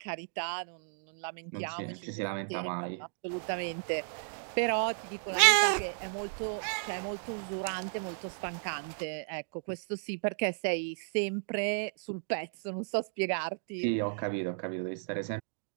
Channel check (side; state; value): left; silent; digital silence